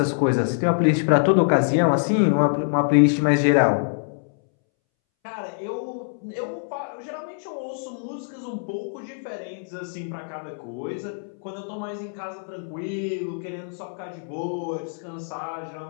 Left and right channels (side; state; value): right; silent; 62 dB below the other